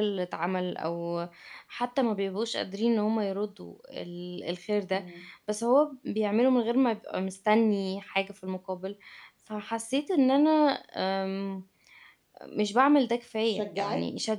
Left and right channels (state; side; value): identical; both; correlation 1.00